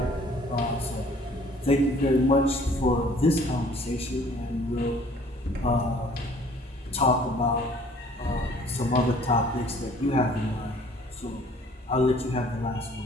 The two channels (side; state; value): both; normal; correlation 0.55